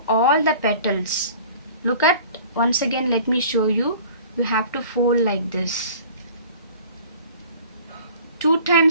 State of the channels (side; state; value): both; inverted; correlation -0.47